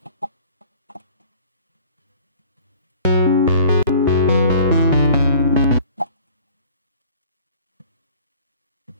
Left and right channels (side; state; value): both; inverted; correlation -0.49